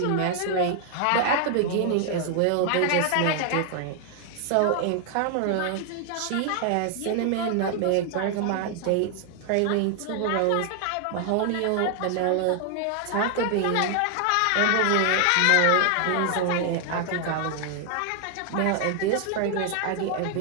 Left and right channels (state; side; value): different; both; correlation 0.00